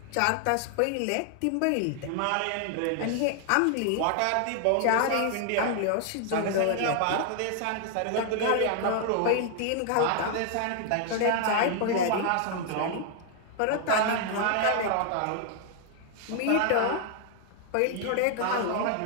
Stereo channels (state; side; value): different; both; correlation 0.00